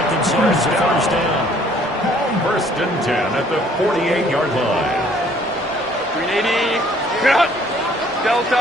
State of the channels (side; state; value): both; normal; correlation 0.59